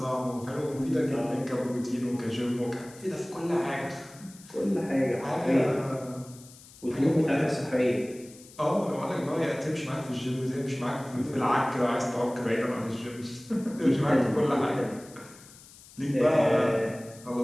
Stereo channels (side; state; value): left; noise; hiss, 21 dB below the sound